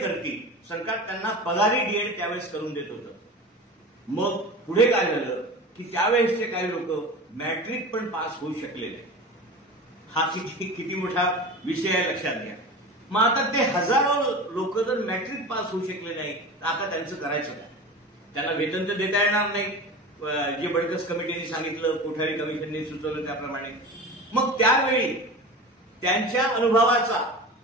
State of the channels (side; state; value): both; normal; correlation 0.32